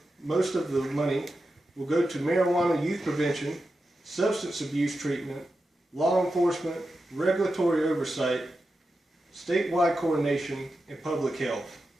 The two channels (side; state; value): both; normal; correlation 0.90